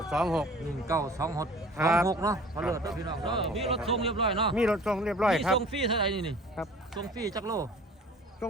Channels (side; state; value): both; normal; correlation 0.46